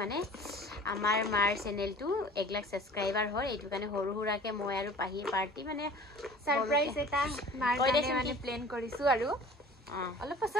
মানে আমাৰ মাৰ চেনেলটো 1 লাখ সাবস্ক্ৰাইবাৰ হয় এটো কানে হৰু হুৰাকে মই আৰু পাহিয়ে পাৰ্টি মানে সাৰপ্ৰাইজ এটা মাৰ কানে মানে প্ল্যান কৰিছো আৰু অলপ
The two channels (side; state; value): both; normal; correlation 0.45